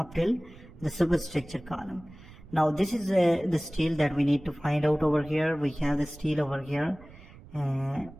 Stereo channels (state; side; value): noise; right; rumble, 20 dB below the sound